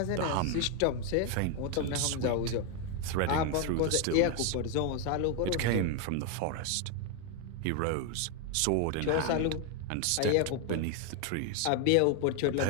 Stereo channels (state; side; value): different; both; correlation 0.01